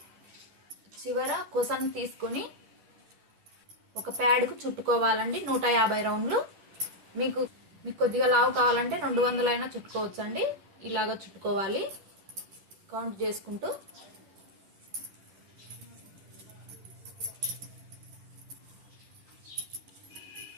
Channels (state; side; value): late; left; 10 ms